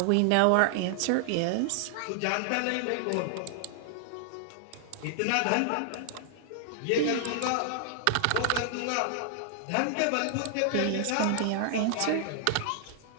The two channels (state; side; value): different; both; correlation -0.01